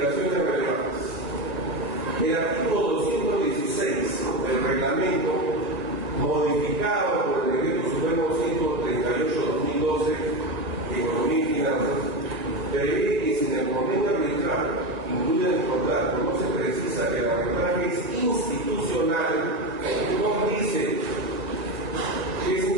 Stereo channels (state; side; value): late; left; 1.9 ms